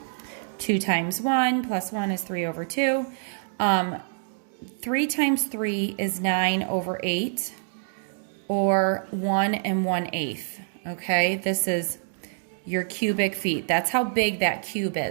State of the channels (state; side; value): silent; left; digital silence